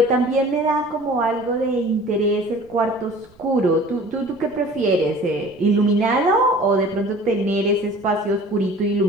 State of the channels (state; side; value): noise; right; rumble, 28 dB below the sound